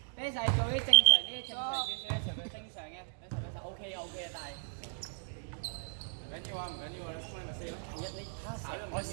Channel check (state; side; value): silent; left; digital silence